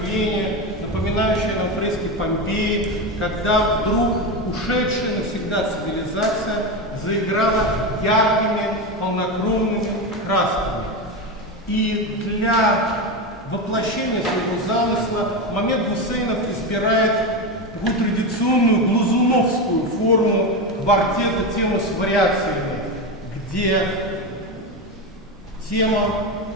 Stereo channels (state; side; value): normal; both; correlation 0.16